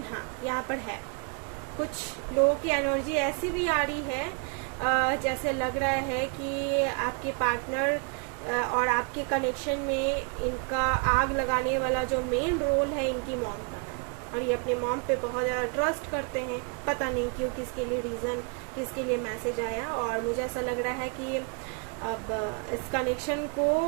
हाँ, यहाँ पर है कुछ लोगों की एनर्जी ऐसी भी आ रही है जैसे लग रहा है कि आपके पार्टनर और आपके कनेक्शन में इनका आग लगाने वाला जो मेन रोल है इनकी मॉम का है, और ये अपने मॉम पे बहुत ज़्यादा ट्रस्ट करते हैं। पता नहीं क्यों, किसके लिए रीज़न, किसके लिए मैसेज आया, और मुझे ऐसा लग रहा है कि अब इस कनेक्शन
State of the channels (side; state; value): left; quieter; 35.2 dB